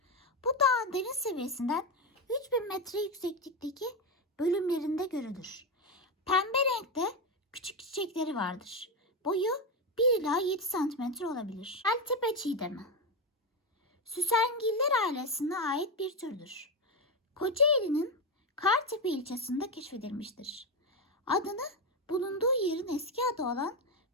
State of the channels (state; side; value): normal; both; correlation 0.11